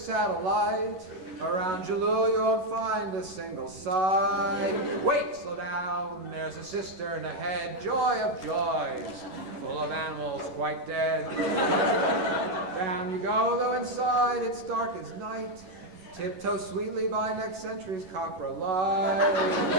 Around Jalul, you won't find a single site. Wait, slow down. There's a cistern ahead. Joy of joys. Full of animals quite dead. Down you go, though inside it's dark as night. Tiptoe sweetly by next century's copper light.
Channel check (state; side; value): late; left; 11 ms